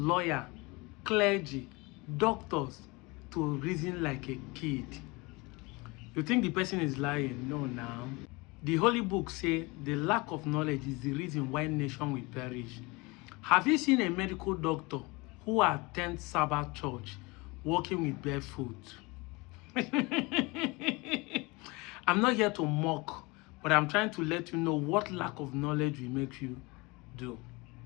clergy, doctors to reason like a kid. You think the person is lying? No, now. The Holy Book says the lack of knowledge is the reason why nation will perish. Have you seen a medical doctor who attends Sabbath church walking with barefoot? I'm not here to mock, but I'm trying to let you know what lack of knowledge will make you do.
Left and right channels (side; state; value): right; quieter; 25.4 dB